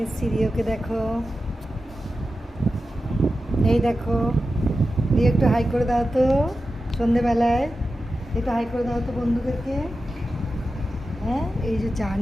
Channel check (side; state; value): both; normal; correlation 0.92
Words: এসেছি রিওকে। দেখো, এই দেখো রিও, একটু হাই করে দাও তো সন্ধেবেলায়, একটু হাই করে দাও তো বন্ধুদেরকে। হ্যাঁ, এই যে চা